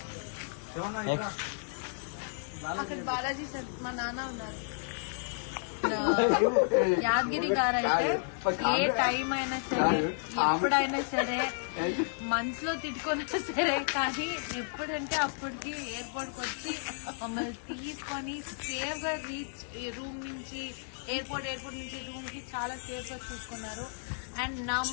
అక్కడ బాలాజీ సార్ మా నాన్న ఉన్నారు. యాదగిరి గారు అయితే ఏ టైం అయినా సరే, ఎప్పుడైనా సరే, మనసులో తిట్టుకున్నా సరే, కానీ ఎప్పుడంటే అప్పటికి ఎయిర్పోర్ట్ కి వచ్చి మమ్మల్ని తీసుకొని సేఫ్ గా రీచ్ రూమ్ నుంచి ఎయిర్పోర్ట్ నుంచి రూమ్ కి చాలా సేఫ్ గా చూసుకున్నారు. And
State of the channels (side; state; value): right; silent; digital silence